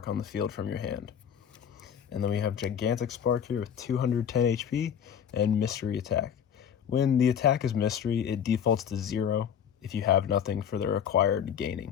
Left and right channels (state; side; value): quieter; right; 8.4 dB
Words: on the field from your hand. And then we have Gigantic Spark here with 210 HP and Mystery Attack. When the attack is Mystery, it defaults to 0 if you have nothing for the required